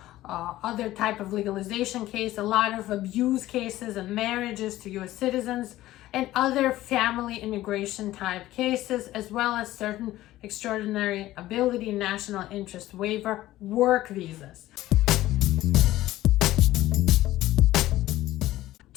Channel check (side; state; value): right; quieter; 15.5 dB